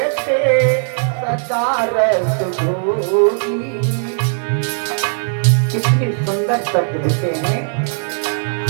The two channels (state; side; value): silent; left; digital silence